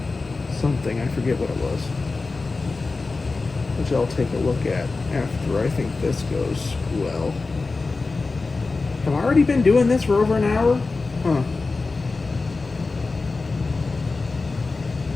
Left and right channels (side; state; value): right; quieter; 3.8 dB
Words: something. I forget what it was. Which I'll take a look at after I think this goes well. Have I already been doing this for over an hour? Huh.